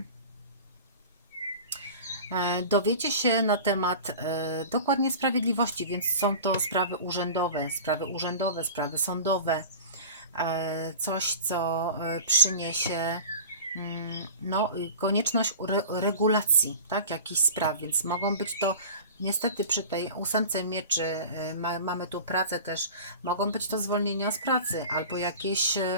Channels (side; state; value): both; inverted; correlation -0.36